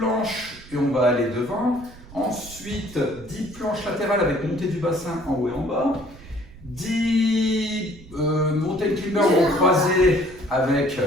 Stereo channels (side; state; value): right; noise; rumble, 19 dB below the sound